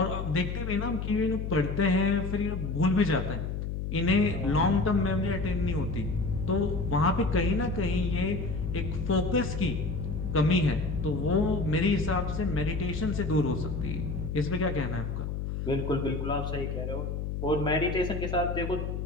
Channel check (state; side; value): noise; left; hum, 3 dB below the sound